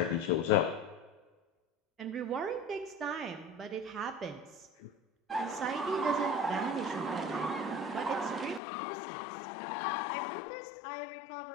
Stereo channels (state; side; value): drops out; right; at 8.6 s